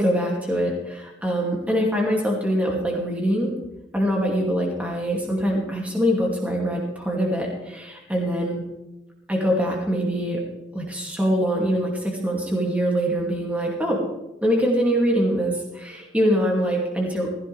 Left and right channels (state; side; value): normal; both; correlation 0.70